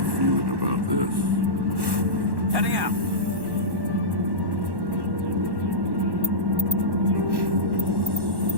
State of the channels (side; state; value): left; late; 1.1 ms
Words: feeling about this. Heading out.